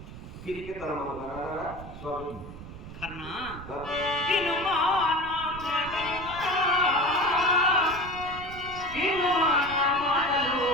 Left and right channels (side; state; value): right; noise; rumble, 13 dB below the sound